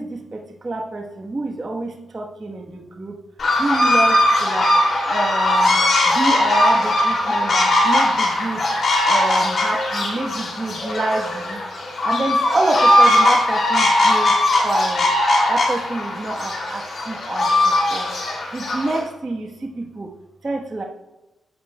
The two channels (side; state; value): both; normal; correlation 0.86